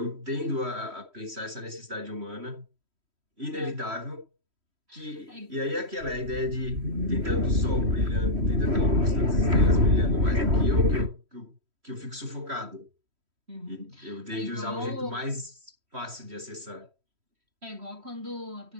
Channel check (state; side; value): late; left; 3.1 ms